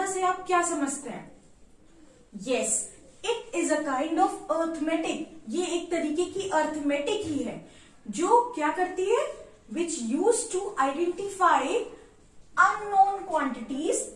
से आप क्या समझते हैं? Yes, it is a kind of arithmetic. ये एक तरीके की arithmetic ही है जो क्या करती है? Which used to identify unknown quantities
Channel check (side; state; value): both; identical; correlation 1.00